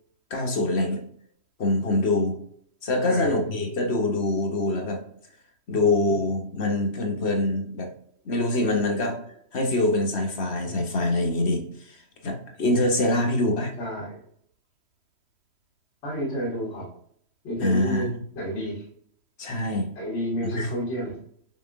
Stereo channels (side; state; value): right; late; 3.1 ms